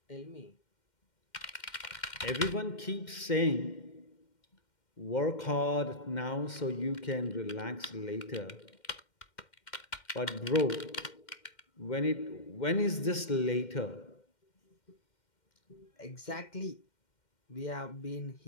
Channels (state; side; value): late; right; 2.1 ms